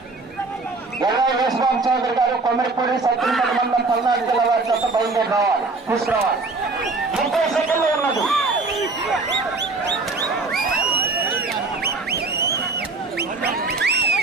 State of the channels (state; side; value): quieter; left; 3.6 dB